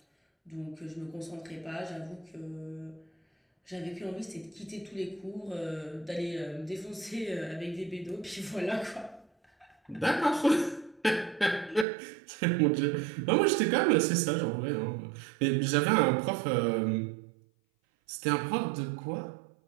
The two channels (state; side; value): drops out; left; at 11.9 s